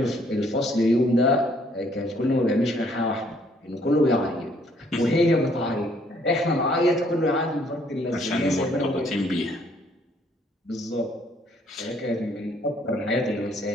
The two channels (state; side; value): normal; both; correlation 0.65